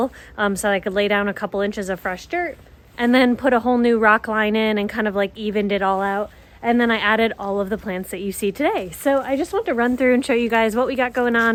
so I could lay down a couple inches of fresh dirt, and then put a whole new rock line in and kind of like evened it all out. And then I added all of the plants that you see today. So I just want to run through and show you guys what we got going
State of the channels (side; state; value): both; identical; correlation 1.00